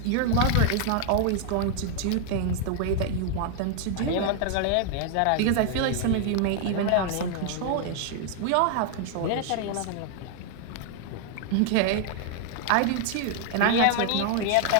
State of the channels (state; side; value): different; both; correlation 0.00